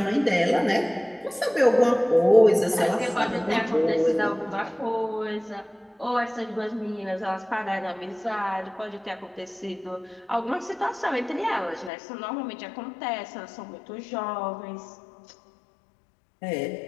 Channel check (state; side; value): drops out; right; at 11.9 s